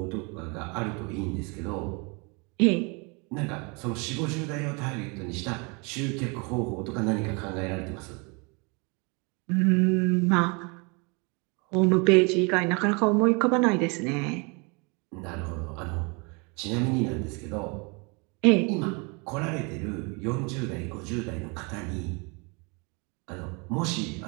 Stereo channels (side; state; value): left; quieter; 31.2 dB